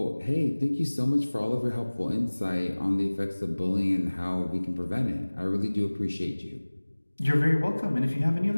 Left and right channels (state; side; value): inverted; both; correlation -1.00